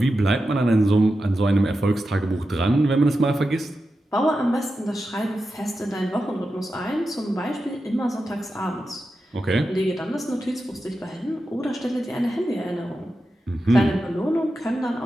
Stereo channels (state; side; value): normal; both; correlation 0.90